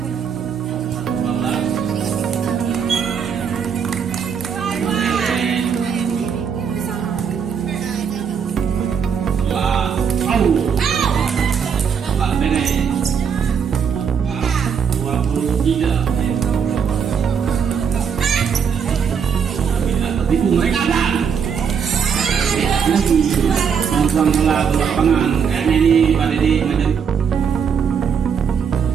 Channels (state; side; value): quieter; left; 6.9 dB